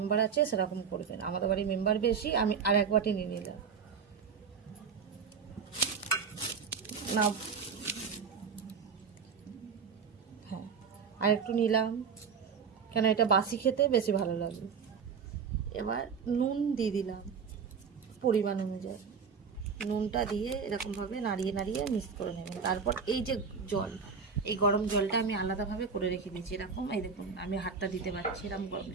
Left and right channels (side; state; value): left; quieter; 6.0 dB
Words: আছে সেরকম করবেন। আমাদের বাড়ির মেম্বার বেশি, আমি আর এক বাটি নিয়ে নিলাম। না, হ্যাঁ, আর একটু নিলাম, কেন এটা বাসি খেতে বেশি ভালো লাগে। এবার নুন দিয়ে দিলাম পরিমাণ অনুযায়ী। নুনটা দিয়ে এরকমভাবে নাড়িয়ে নাড়িয়ে মিক্স করে নেবেন। তারপর এই যে জল, এই গরম জলটা আমি আলাদাভাবে করে রেখে দিয়েছি। এরকম, এই দেখুন আমি হাতটা দিতে পারছি, এরকম গরম